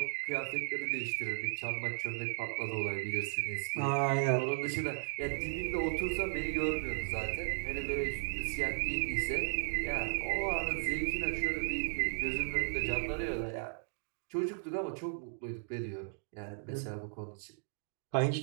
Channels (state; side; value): silent; left; digital silence